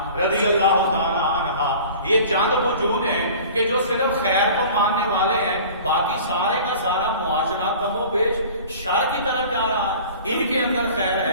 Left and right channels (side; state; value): both; inverted; correlation -0.43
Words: رضی اللہ تعالی عنہا. یہ چند وجود ہیں کہ جو صرف خیر کو ماننے والے ہیں، باقی سارے کا سارا معاشرہ کم و بیش شر کی طرف جا رہا ہے. ان کے اندر خیر